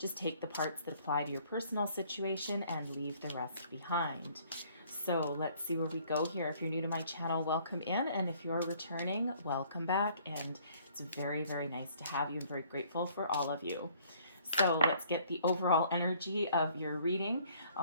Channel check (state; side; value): inverted; both; correlation -0.60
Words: take the parts that apply to your personal situation and leave the rest behind. So let's see where we go here. If you're new to my channel, welcome in. And if you're returning, welcome back. And it's very, very nice to have you. I'm very grateful for all of you. So let's get the overall energy of your reading.